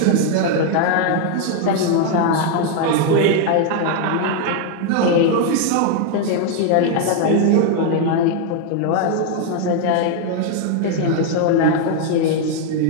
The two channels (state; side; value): different; both; correlation 0.00